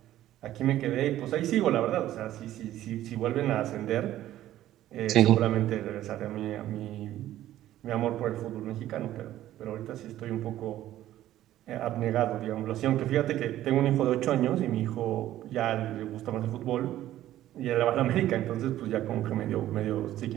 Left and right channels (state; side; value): quieter; left; 13.4 dB